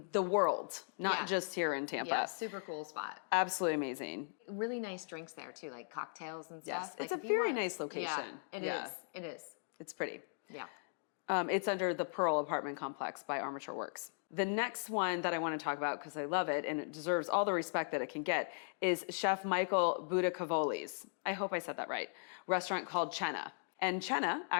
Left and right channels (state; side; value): silent; right; digital silence